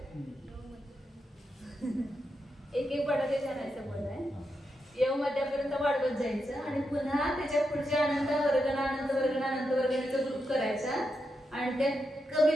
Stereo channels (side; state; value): both; normal; correlation 0.85